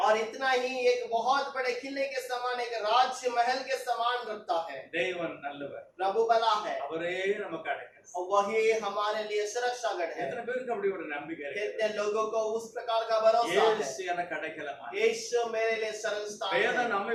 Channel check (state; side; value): identical; both; correlation 1.00